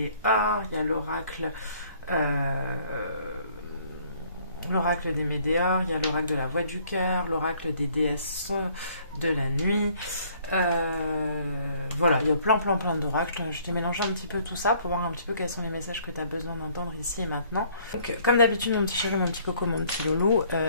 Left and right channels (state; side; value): inverted; both; correlation -0.61